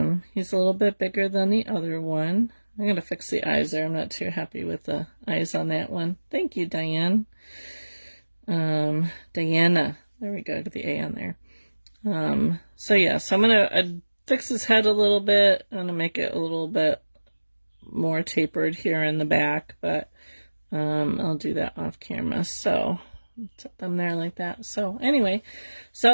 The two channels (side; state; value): both; inverted; correlation -1.00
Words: a little bit bigger than the other one. I'm going to fix the eyes there. I'm not too happy with the eyes on that one. Thank you, Diane. Diana. There we go. Get the A on there. So yeah, so I'm going to fix his head a little bit. I'm going to make it a little bit more tapered here in the back, but I'll do that off camera. So set them there like that. So anyway,